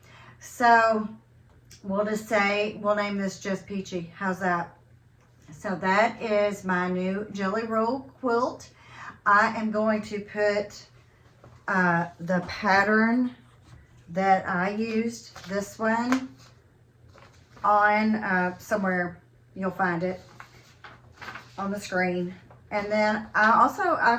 So we'll just say, we'll name this just Peachy. How's that? So that is my new Jelly Roll quilt. I am going to put the pattern that I used, this one, on somewhere. You'll find it on the screen. And then I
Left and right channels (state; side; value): identical; both; correlation 1.00